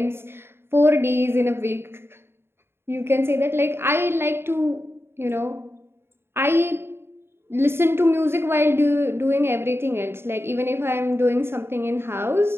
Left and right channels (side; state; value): left; late; 0.11 ms